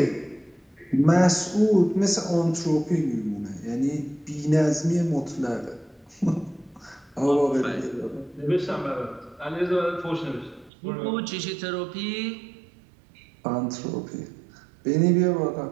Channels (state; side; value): drops out; left; at 10.7 s